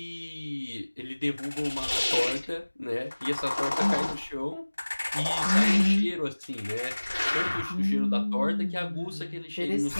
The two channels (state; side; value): inverted; both; correlation -1.00